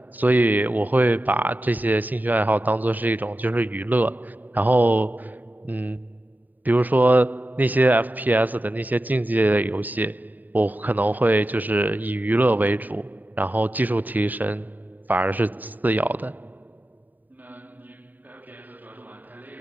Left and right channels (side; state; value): left; late; 0.086 ms